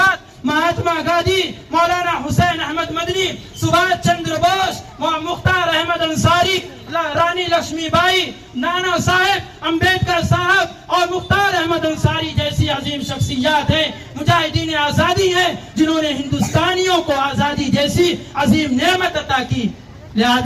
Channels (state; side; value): identical; both; correlation 1.00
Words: مہاتما گاندھی، مولانا حسین احمد مدنی، سبھاش چندر بوس، مختار احمد انصاری، رانی لکشمی بائی، نانا صاحب امبیڈکر صاحب اور مختار احمد انصاری جیسی عظیم شخصیات ہیں، مجاہدین آزادی ہیں، جنہوں نے ہندوستانیوں کو آزادی جیسی عظیم نعمت عطا کی۔